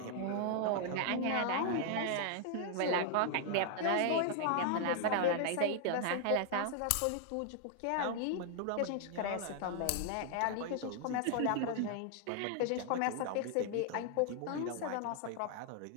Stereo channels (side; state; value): both; different; correlation 0.00